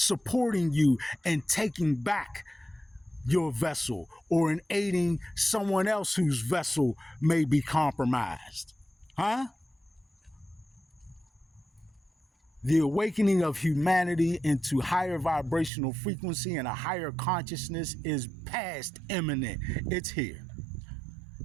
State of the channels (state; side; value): drops out; left; at 15.7 s